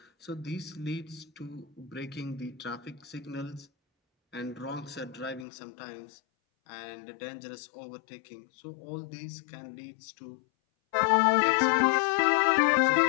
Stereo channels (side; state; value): right; drops out; at 5.5 s